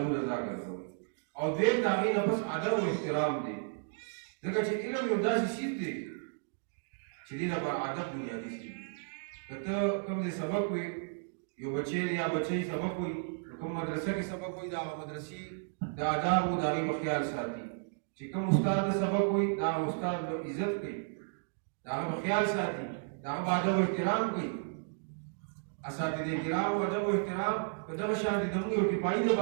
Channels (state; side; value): silent; left; digital silence